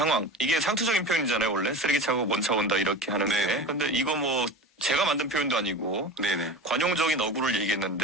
이게 상투적인 표현이잖아요. 원래 쓰레기차고 먼차 온다 이렇게 하는 네네. 게. 근데 이거 뭐 제가 만든 표현도 아니고 네네. 관용적인 어구를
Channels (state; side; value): normal; both; correlation 0.30